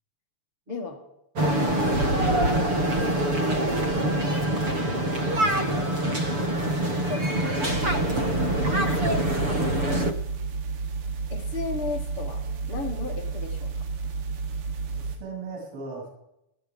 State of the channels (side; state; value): left; late; 6.9 ms